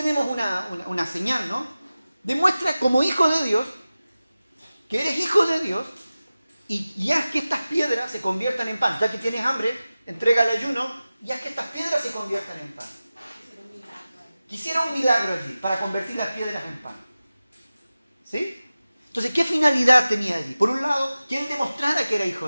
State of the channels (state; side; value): inverted; both; correlation -0.96